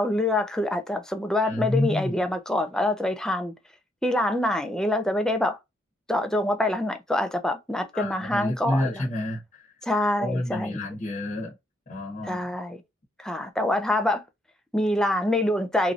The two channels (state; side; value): normal; both; correlation 0.75